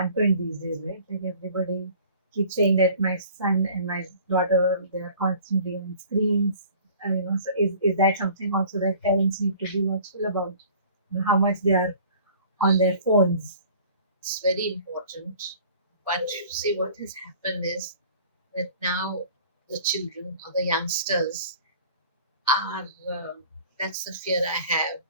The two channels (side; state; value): both; inverted; correlation -0.49